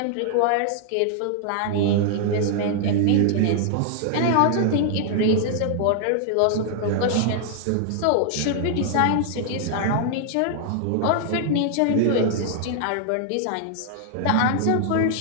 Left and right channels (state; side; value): different; both; correlation 0.00